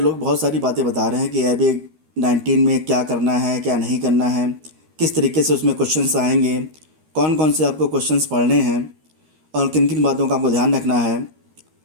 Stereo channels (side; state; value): left; late; 13 ms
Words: बहुत सारी बातें बता रहे हैं कि AIB-19 में क्या करना है, क्या नहीं करना है, किस तरीके से उसमें क्वेश्चंस आएंगे, कौन कौन से आपको क्वेश्चंस पढ़ने हैं और किन किन बातों का आपको ध्यान रखना है।